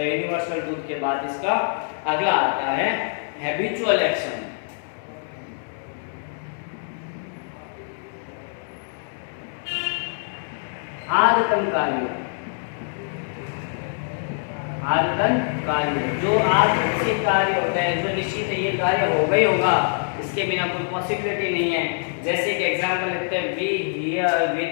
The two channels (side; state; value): right; silent; digital silence